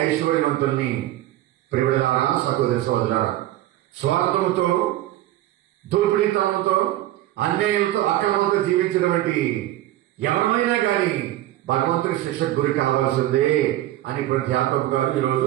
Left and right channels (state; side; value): quieter; left; 14.7 dB